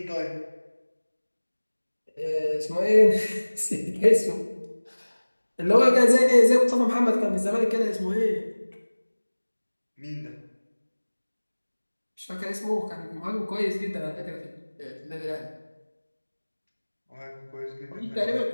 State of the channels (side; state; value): both; inverted; correlation -1.00